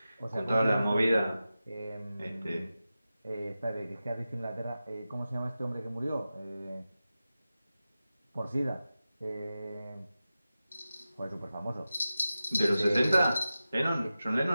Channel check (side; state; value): both; inverted; correlation -0.93